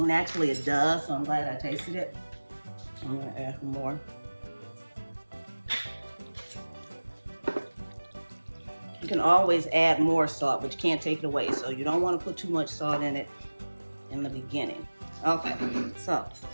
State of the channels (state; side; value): inverted; both; correlation -1.00